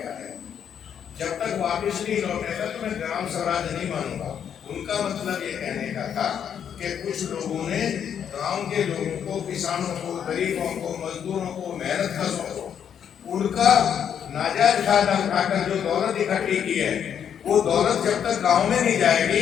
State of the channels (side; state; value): right; quieter; 8.5 dB